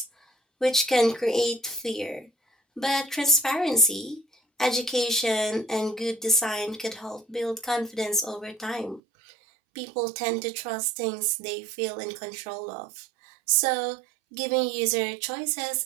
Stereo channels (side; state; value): left; drops out; at 9.0 s